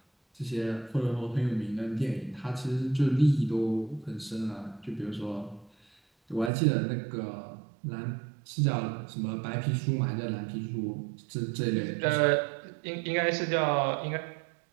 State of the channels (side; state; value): left; drops out; at 6.5 s